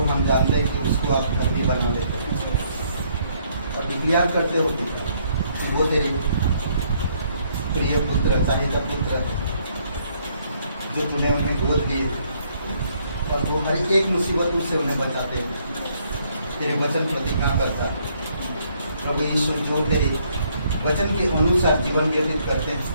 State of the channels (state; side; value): inverted; both; correlation -0.68